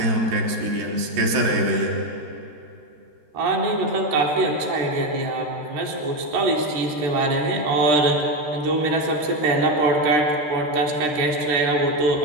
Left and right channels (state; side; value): late; left; 13 ms